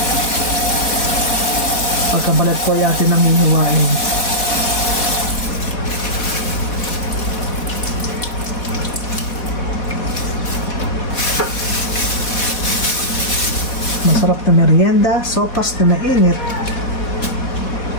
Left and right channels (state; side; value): late; right; 4.2 ms